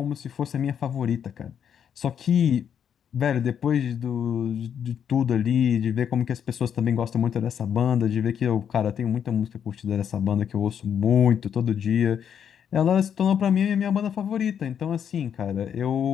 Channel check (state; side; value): quieter; right; 8.3 dB